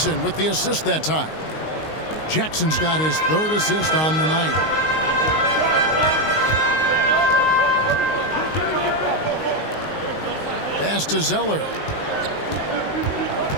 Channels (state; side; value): late; right; 19 ms